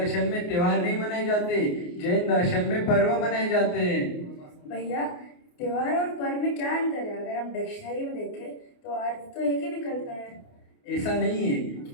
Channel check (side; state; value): right; late; 28 ms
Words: में त्योहार नहीं मनाए जाते, जैन दर्शन में पर्व मनाए जाते हैं। भैया, त्योहार और पर्व में क्या अंतर है? अगर हम डिक्शनरी में देखें तो अर्थ तो एक ही निकलता है। ऐसा नहीं है।